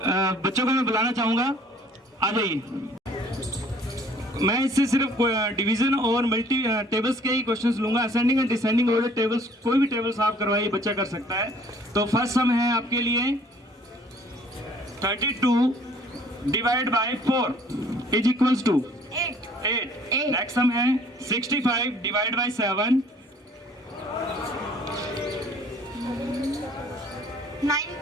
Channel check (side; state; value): both; normal; correlation 0.57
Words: बच्चों को मैं बुलाना चाहूंगा, आ जाइए। मैं इससे सिर्फ डिवीजन और मल्टी टेबल्स के ही क्वेश्चंस लूंगा। Ascending and descending order tables, कोई भी टेबल्स आप करवाइए, बच्चा कर सकता है। तो फर्स्ट सम है आपके लिए 32 divide by 4 is equals to 8। Next sum है 65 divide by 7